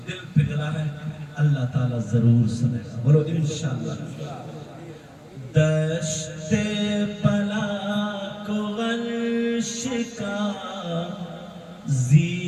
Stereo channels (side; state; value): both; identical; correlation 1.00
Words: دل پگھلا ہے اللہ تعالیٰ ضرور سنے گا، بولو انشاءاللہ۔ دشت بلا کو عرش کا